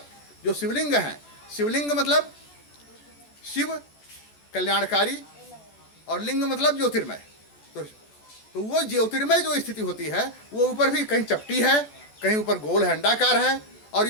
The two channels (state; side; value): late; right; 14 ms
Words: जो शिवलिंग हैं, शिवलिंग मतलब शिव कल्याणकारी और लिंग मतलब ज्योतिर्मय। तो वो ज्योतिर्मय जो स्थिति होती है वो ऊपर भी कहीं चपटी है, कहीं ऊपर गोल है, अंडाकार है, और